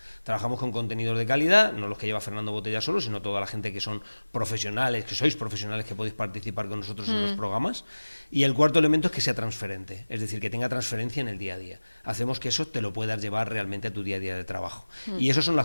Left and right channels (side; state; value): both; inverted; correlation -1.00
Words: Trabajamos con contenidos de calidad, no los que lleva Fernando Botella solo, sino toda la gente que son profesionales, que sois profesionales, que podéis participar con nosotros en los programas. Y el cuarto elemento es que sea transferente, es decir, que tenga transferencia en el día a día. Hacemos que eso te lo puedas llevar realmente a tu día a día de trabajo. Y esas son